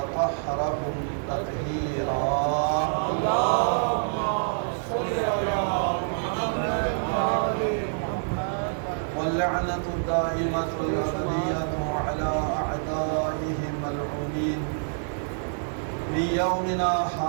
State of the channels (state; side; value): silent; left; digital silence